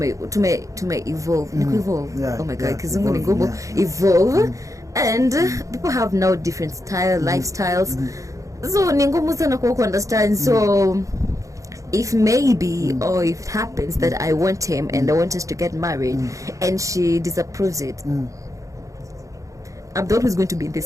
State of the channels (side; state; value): left; late; 0.16 ms